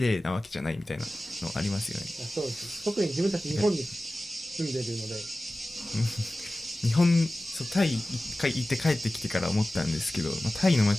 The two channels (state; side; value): normal; both; correlation 0.96